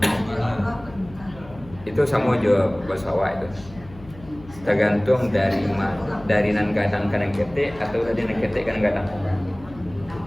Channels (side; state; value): left; noise; hum, 20 dB below the sound